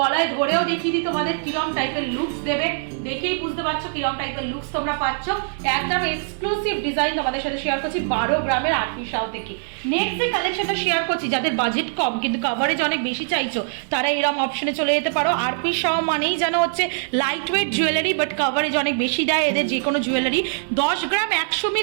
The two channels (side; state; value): left; silent; digital silence